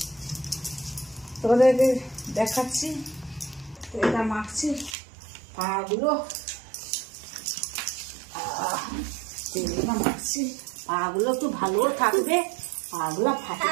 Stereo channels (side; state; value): left; drops out; at 5.0 s